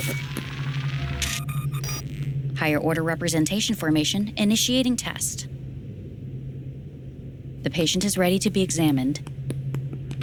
Higher order representation formation, initiating test. The patient is ready to be examined.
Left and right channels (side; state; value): both; identical; correlation 1.00